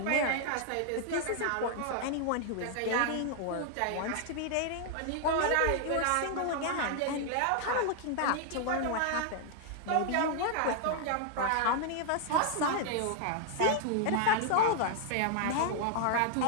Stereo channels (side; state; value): both; different; correlation 0.00